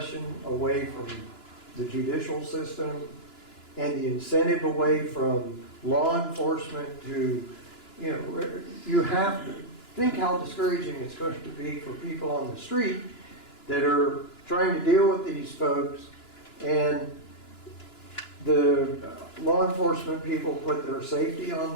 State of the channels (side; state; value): right; late; 2.9 ms